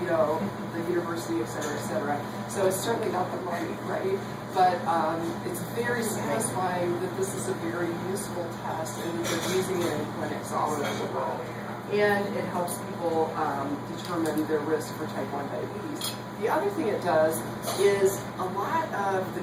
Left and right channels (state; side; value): identical; both; correlation 1.00